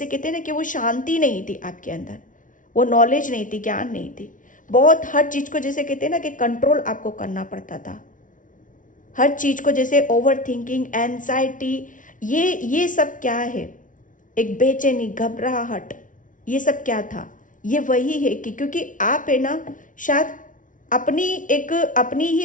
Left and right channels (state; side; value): late; right; 0.38 ms